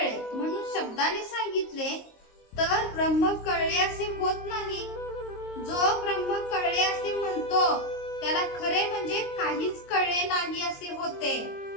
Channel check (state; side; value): late; right; 22 ms